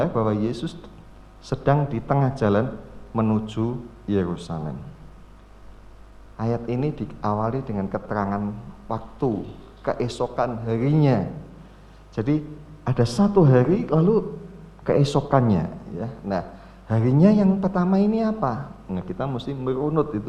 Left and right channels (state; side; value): identical; both; correlation 1.00